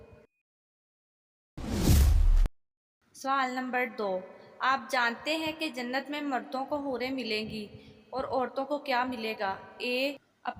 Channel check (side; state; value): both; identical; correlation 1.00